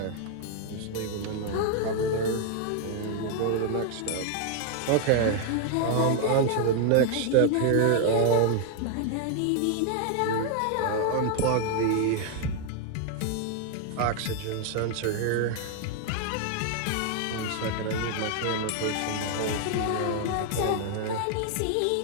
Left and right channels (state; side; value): different; both; correlation 0.00